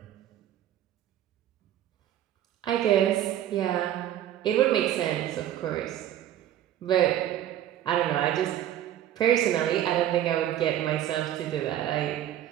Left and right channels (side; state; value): left; quieter; 11.8 dB